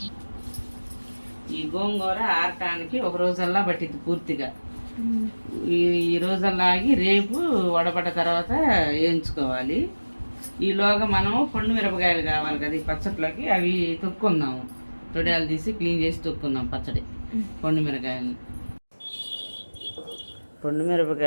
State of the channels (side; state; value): both; inverted; correlation -1.00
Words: ఈ గోంగూర ఆరటానికి ఒక రోజల్లా పట్టింది పూర్తిగా. ఈ రోజల్లా ఆగి రేపు వడబడ్డ తర్వాత వేయించుకోవాలి. ఈలోగా మనం పండు మిరపకాయలు కావాలి కదా ఈ పచ్చట్లోకి, అవి తొక్కుందాము. తొడియాలు తీసి క్లీన్ చేసి తొక్కుందాం పచ్చడి. పండు